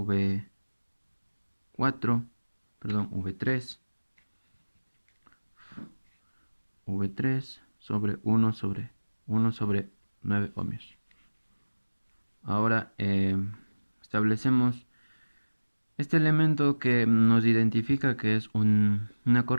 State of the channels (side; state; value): both; inverted; correlation -1.00